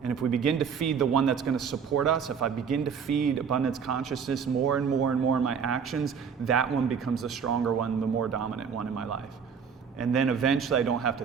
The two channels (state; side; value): quieter; left; 6.7 dB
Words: And if we begin to feed the one that's going to support us, if I begin to feed abundance consciousness more and more and more in my actions, that one becomes the stronger one, the more dominant one in my life. And then eventually I don't have to